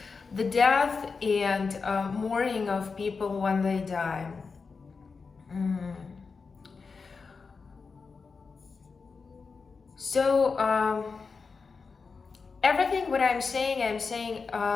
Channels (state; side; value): quieter; right; 4.8 dB